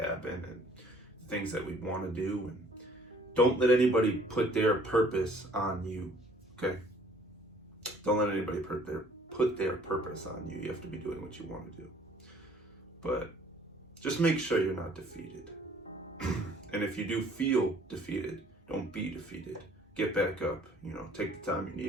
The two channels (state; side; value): normal; both; correlation 0.57